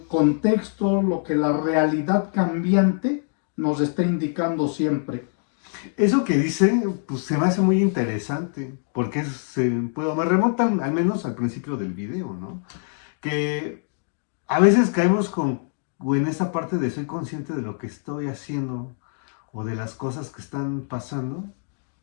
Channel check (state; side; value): silent; right; 62 dB below the other